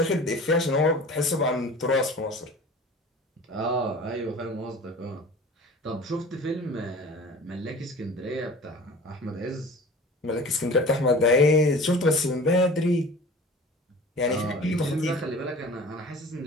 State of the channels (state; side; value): normal; both; correlation 0.41